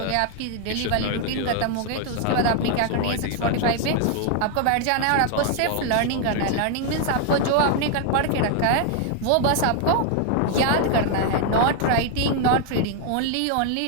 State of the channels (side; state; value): both; different; correlation 0.00